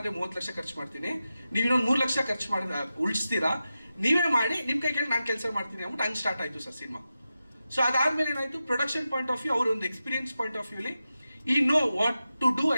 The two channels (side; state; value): both; inverted; correlation -0.92